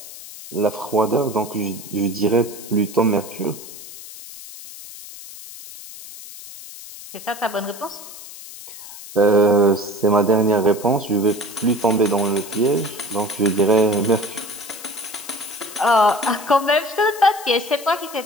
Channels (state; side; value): noise; left; hiss, 15 dB below the sound